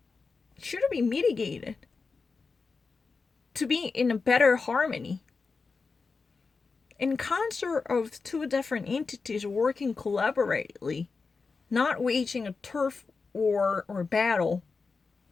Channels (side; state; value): right; quieter; 4.5 dB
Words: should be mitigated to be in a better harmony. in concert of two different entities working collaboratively, not waging a turf war or battle.